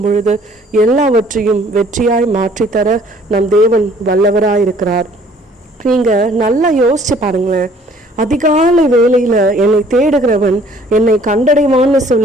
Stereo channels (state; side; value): normal; both; correlation 0.57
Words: பொழுது எல்லாவற்றையும் வெற்றியாய் மாற்றித்தர நம் தேவன் வல்லவராயிருக்கிறார். நீங்க நல்லா யோசிச்சு பாருங்களேன். அதிகாலை வேளையில என்னை தேடுகிறவன் என்னை கண்டடைவான்னு